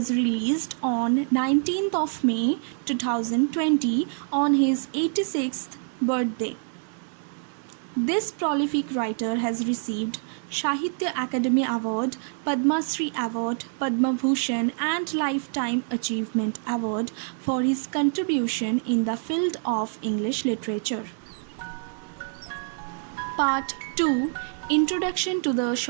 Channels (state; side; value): silent; left; 61 dB below the other